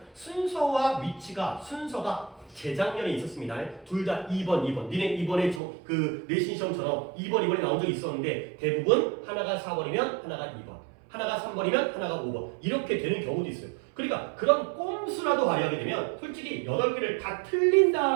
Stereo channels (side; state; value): left; drops out; at 5.6 s